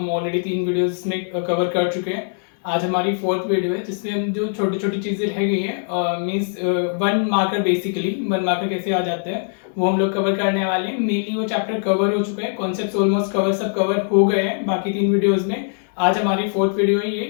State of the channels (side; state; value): right; silent; 61 dB below the other